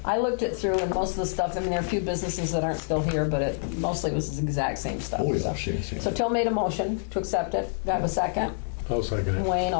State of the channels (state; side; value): silent; right; 60 dB below the other